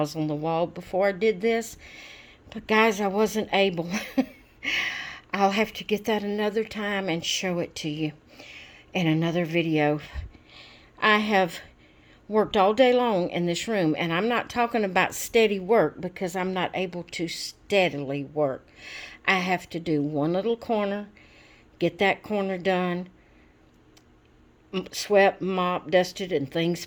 on the wall before I did this, but guys, I wasn't able. I'll have to get that another time and show it to you in another video. I have worked all day long in this room, and I'm not talking about steady work because I'm not able to steadily work. I have to do one little corner, get that corner done, swept, mopped, dusted, and things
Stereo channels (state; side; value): identical; both; correlation 1.00